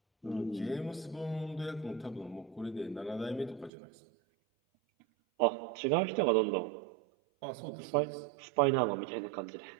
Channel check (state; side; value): drops out; left; at 3.7 s